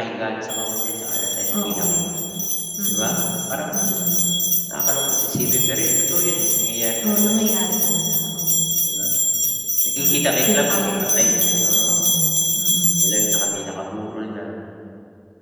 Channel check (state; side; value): identical; both; correlation 1.00